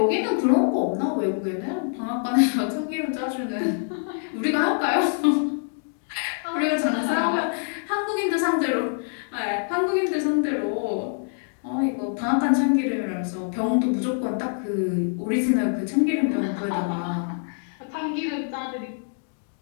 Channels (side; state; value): right; silent; digital silence